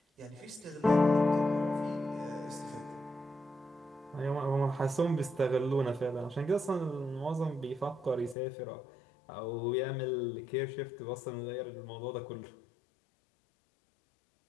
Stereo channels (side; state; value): right; drops out; at 8.3 s